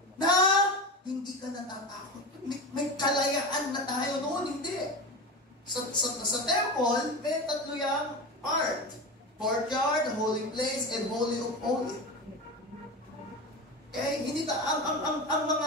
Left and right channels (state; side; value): normal; both; correlation 0.24